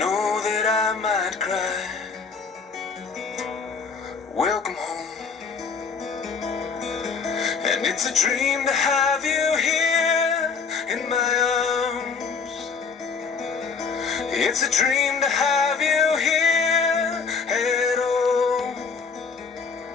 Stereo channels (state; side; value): quieter; right; 5.4 dB